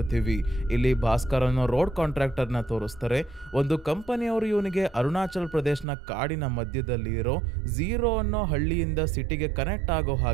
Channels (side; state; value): left; drops out; at 5.9 s